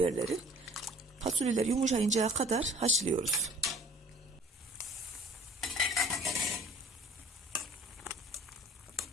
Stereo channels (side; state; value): both; normal; correlation 0.51